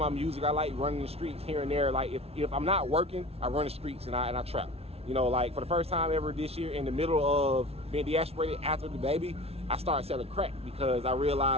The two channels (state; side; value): late; left; 0.30 ms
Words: music, I like running the streets here and there. Like, if I'm not working, I run the streets and I trap. You know, like, for the first time ever this year, in the middle of being deasperated after the baby, I started selling crack, because I